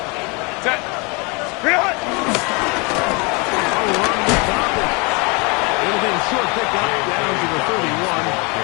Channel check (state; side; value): quieter; right; 29.6 dB